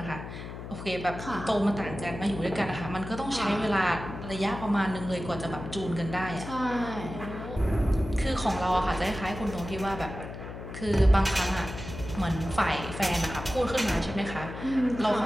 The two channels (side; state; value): left; noise; hum, 10 dB below the sound